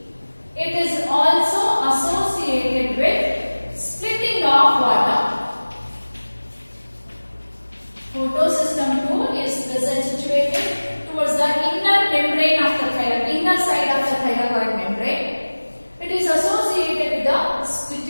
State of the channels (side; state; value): both; inverted; correlation -1.00